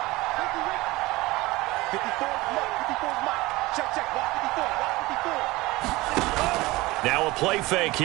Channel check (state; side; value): quieter; left; 20.6 dB